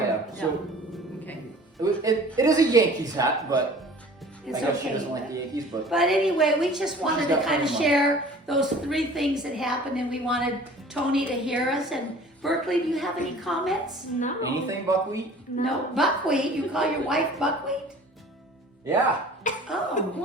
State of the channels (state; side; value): normal; both; correlation 0.46